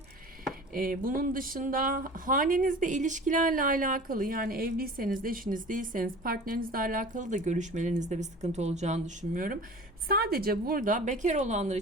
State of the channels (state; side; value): normal; both; correlation 0.40